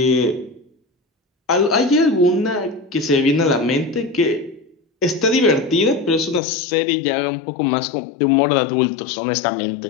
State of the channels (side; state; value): right; drops out; at 6.4 s